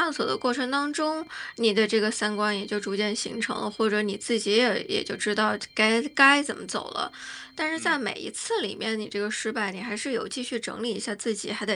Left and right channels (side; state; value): both; identical; correlation 1.00